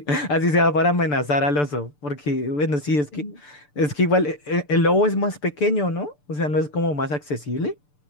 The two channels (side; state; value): right; late; 6.8 ms